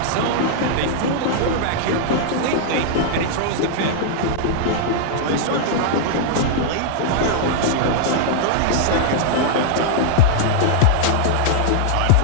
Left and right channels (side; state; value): both; different; correlation -0.01